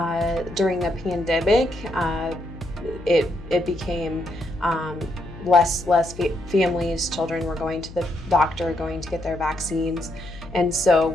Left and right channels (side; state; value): left; noise; hum, 15 dB below the sound